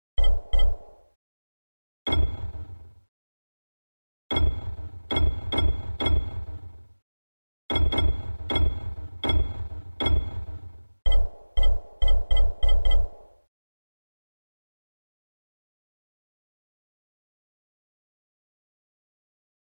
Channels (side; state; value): both; inverted; correlation -1.00